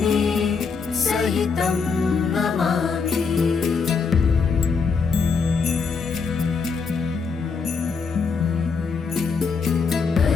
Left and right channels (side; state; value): right; quieter; 5.2 dB